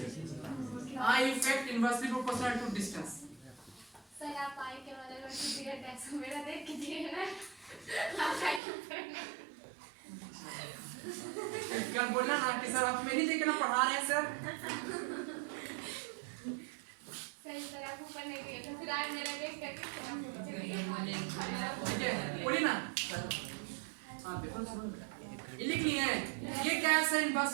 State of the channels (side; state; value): left; drops out; at 8.6 s